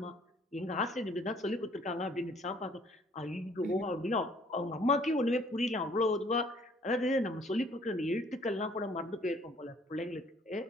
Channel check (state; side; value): normal; both; correlation 0.59